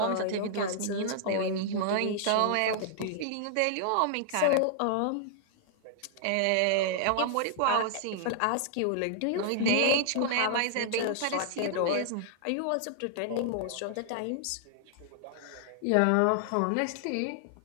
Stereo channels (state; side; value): different; both; correlation -0.01